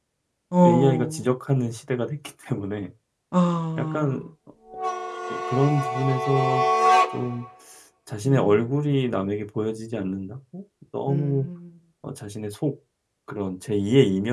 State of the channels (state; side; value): identical; both; correlation 1.00